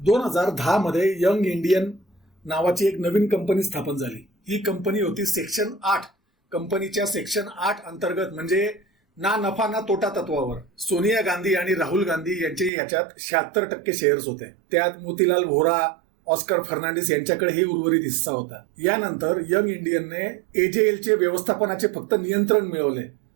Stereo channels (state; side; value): drops out; left; at 12.7 s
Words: मध्ये यंग इंडियन नावाची एक नवीन कंपनी स्थापन झाली। ही कंपनी होती सेक्शन 8 कंपनीच्या सेक्शन 8 अंतर्गत, म्हणजे ना नफा ना तोटा तत्वावर। सोनिया गांधी आणि राहुल गांधी यांचे याच्यात 76% शेअर्स होते। त्यात मोतीलाल व्होरा, ऑस्कर फर्नांडिस यांच्याकडेही उर्वरित हिस्सा होता। यानंतर यंग इंडियनने एजेएलचे व्यवस्थापनाचे फक्त नियंत्रण मिळवले,